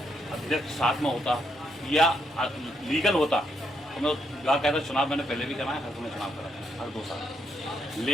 साथ में होता या लीगल होता तो मैं कहता चुनाव मैंने पहले भी कराया, हर समय चुनाव करा हर 2 साल।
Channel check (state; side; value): normal; both; correlation 0.77